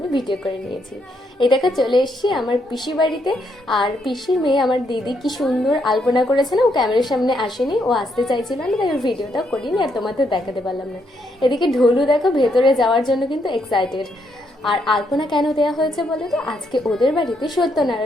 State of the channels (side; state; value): both; normal; correlation 0.76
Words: ভিডিও করে নিয়েছি। এই দেখো চলে এসেছি আমার পিসি বাড়িতে। আর পিসির মেয়ে আমার দিদি কি সুন্দর আলপনা করেছে না, ও ক্যামেরার সামনে আসেনি, ও আসতে চাইছিল না, তাই ওর ভিডিওটা করিনি আর তোমাদের দেখাতে পারলাম না। এদিকে ঢোলু দেখো ভেতরে যাওয়ার জন্য কিন্তু এক্সাইটেড। আর আলপনা কেন দেওয়া হয়েছে বলো তো, আজকে ওদের বাড়িতে